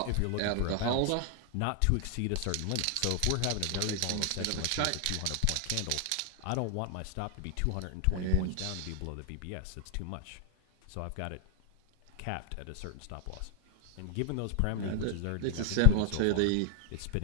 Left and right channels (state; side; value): different; both; correlation 0.00